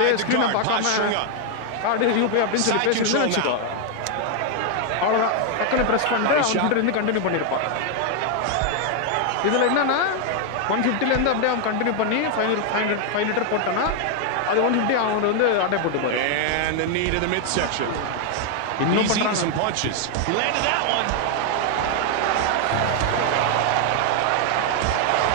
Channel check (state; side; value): different; both; correlation 0.00